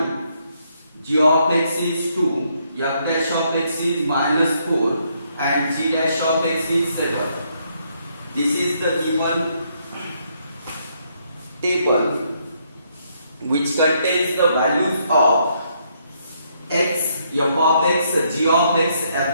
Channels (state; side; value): inverted; both; correlation -0.73